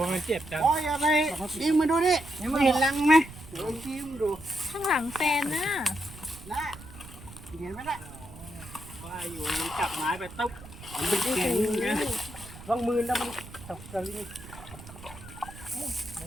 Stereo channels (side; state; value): right; noise; rumble, 16 dB below the sound